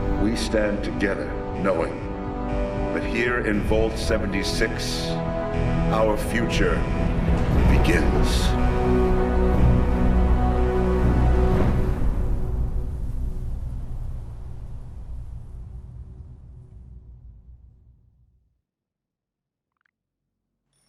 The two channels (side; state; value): both; identical; correlation 1.00